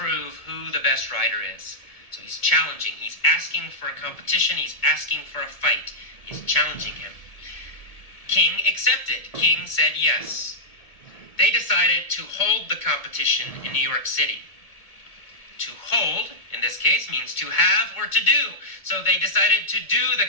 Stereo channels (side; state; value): right; late; 1.7 ms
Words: who the best writer is. So he's challenging. He's asking for a competition. He's asking for a fight. He's challenging him. King accepted. King said yes. They decided to hold the competition in New York City. To hold, in this case, means to have or to do. So they decided to do the